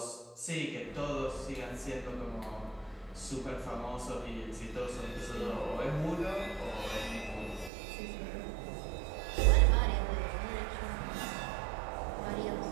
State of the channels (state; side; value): drops out; left; at 7.7 s